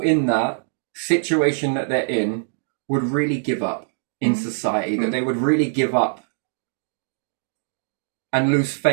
in that situation that they're in would really give up in society, that they would really give up and lose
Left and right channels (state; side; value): silent; left; digital silence